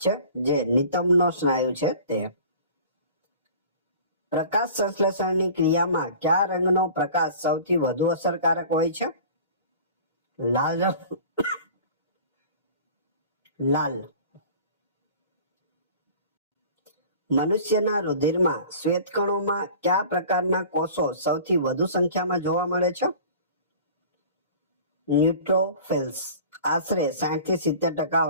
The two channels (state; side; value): inverted; both; correlation -0.43